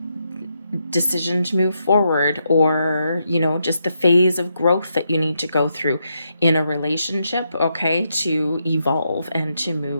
decision to move forward, or just the phase of growth that you need to go through in a relationship, okay, to evolve and to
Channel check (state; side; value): inverted; both; correlation -0.81